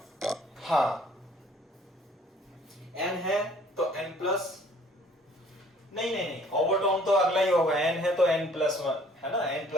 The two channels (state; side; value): normal; both; correlation 0.57